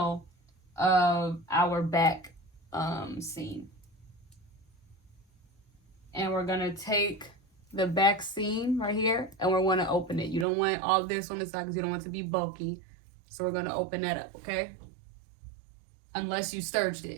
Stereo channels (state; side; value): drops out; left; at 10.5 s